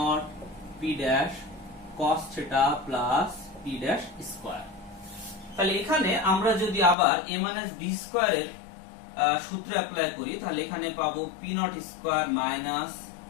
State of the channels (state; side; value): drops out; right; at 7.0 s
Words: p dash cos theta plus p dash square. তাহলে এখানে আমরা যদি আবার a মাইনাস b স্কয়ারের সূত্র অ্যাপ্লাই করি তাহলে এখানে পাবো p naught square minus